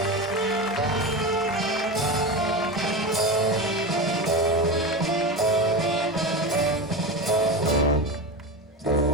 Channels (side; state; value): both; normal; correlation 0.22